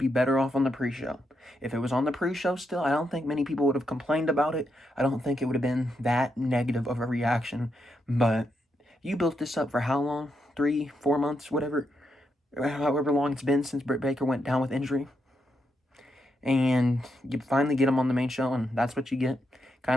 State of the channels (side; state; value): both; normal; correlation 0.82